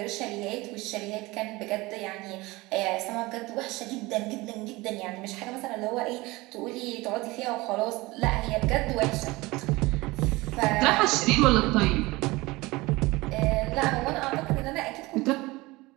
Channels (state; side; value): quieter; left; 21.5 dB